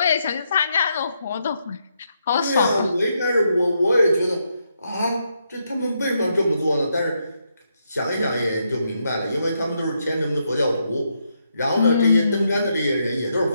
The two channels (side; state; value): both; inverted; correlation -0.79